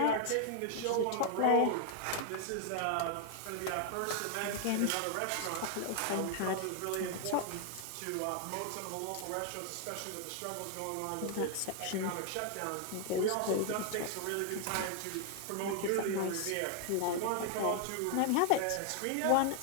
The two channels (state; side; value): different; both; correlation 0.00